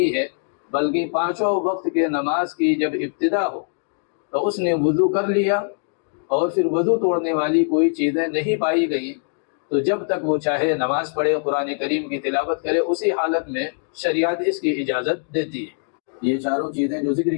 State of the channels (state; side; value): silent; right; digital silence